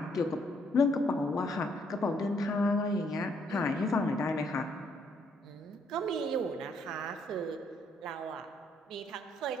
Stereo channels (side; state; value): both; normal; correlation 0.70